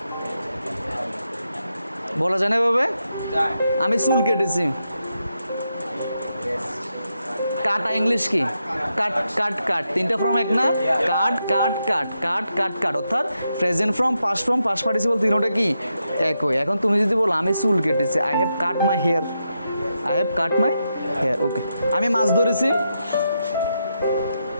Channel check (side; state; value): both; inverted; correlation -0.85